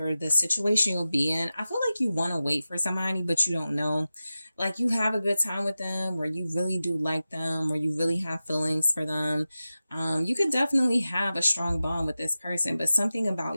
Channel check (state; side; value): inverted; both; correlation -0.94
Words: the situation you'll be in, I feel like you want to wait for somebody, but you don't know. Like you have a good time with them or you really do like them or you really have feelings for them. You could definitely have a strong bond with this person, but something